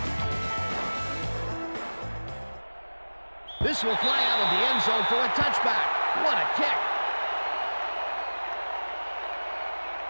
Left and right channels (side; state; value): both; inverted; correlation -1.00